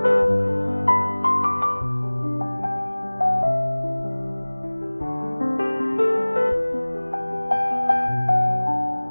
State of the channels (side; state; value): both; inverted; correlation -1.00